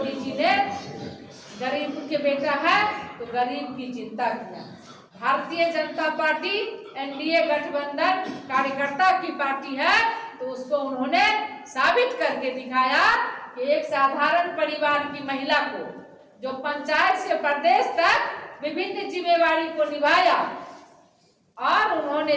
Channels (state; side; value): identical; both; correlation 1.00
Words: जी ने गरीब के बेटा है तो गरीब की चिंता किया। भारतीय जनता पार्टी एनडीए गठबंधन कार्यकर्ता की पार्टी है, तो उसको उन्होंने साबित करके दिखाया कि एक साधारण परिवार की महिला को जो पंचायत से प्रदेश तक विभिन्न जिम्मेवारी को निभाया और